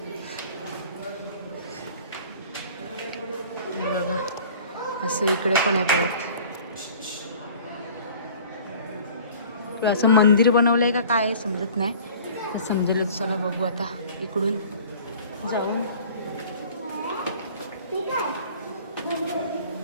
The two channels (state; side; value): inverted; both; correlation -0.47